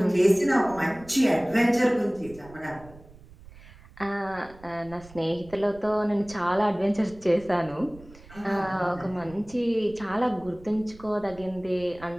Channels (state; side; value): noise; right; rumble, 21 dB below the sound